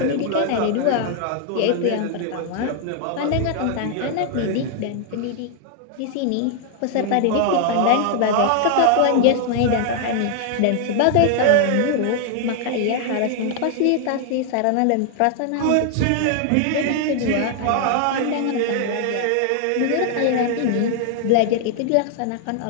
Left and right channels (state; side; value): different; both; correlation 0.00